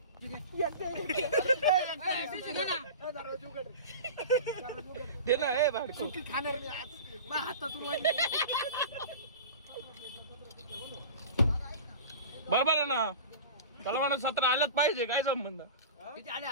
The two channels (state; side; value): inverted; both; correlation -0.34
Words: दे ना, हे भाडको. खाणार मी आज. माझ्या हातातून बरोबर आहे ना. चला म्हणा 17 आलंच पाहिजे. काय संबंध? किती आले